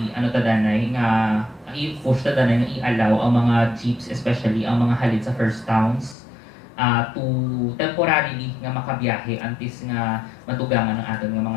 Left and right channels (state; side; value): drops out; right; at 6.2 s